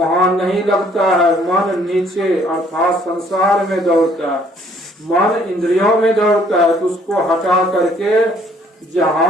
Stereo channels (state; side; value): normal; both; correlation 0.62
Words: नहीं लगता है। मन नीचे अर्थात संसार में दौड़ता है, मन इंद्रियों में दौड़ता है, तो उसको हटा करके